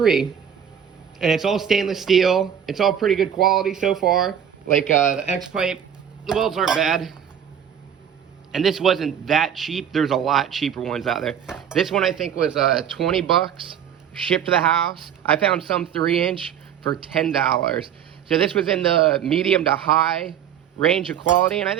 And it's all stainless steel. It's all pretty good quality so far. Like the X-pipe, the welds aren't bad. And this wasn't that cheap. There's a lot cheaper ones out there. This one I think was 20 bucks, shipped to the house. I found some 3-inch for $10. So this was in the medium to high range of quality, and I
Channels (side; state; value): left; quieter; 8.9 dB